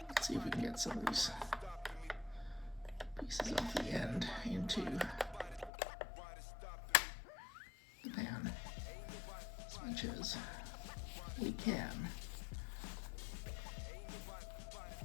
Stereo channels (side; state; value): right; drops out; at 5.7 s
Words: Let's see if we can get some of these pieces off the end into the pan as much as we can.